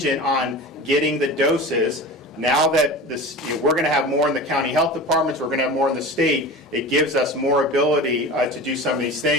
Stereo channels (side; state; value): both; normal; correlation 0.33